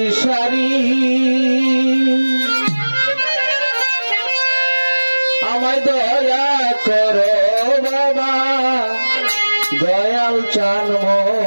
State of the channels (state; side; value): inverted; both; correlation -1.00